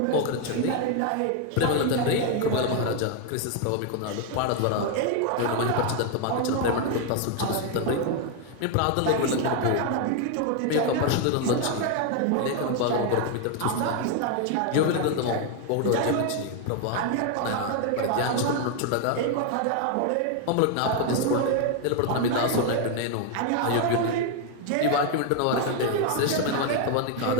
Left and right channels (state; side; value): different; both; correlation 0.01